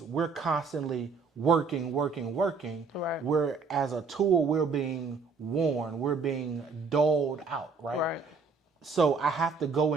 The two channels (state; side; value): quieter; left; 4.8 dB